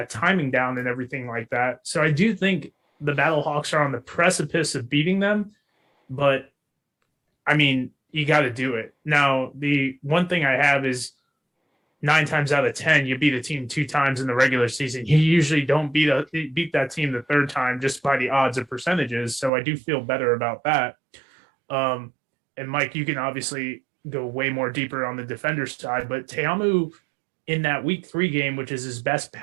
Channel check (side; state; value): left; drops out; at 19.5 s